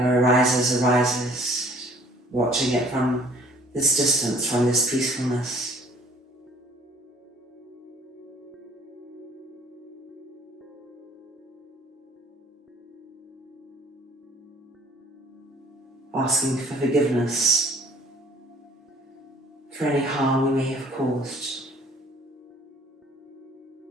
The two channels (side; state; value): both; normal; correlation 0.55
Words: arises, arises, watching it from this distance, from this peacefulness. Asking for forgiveness for any harm we may have caused.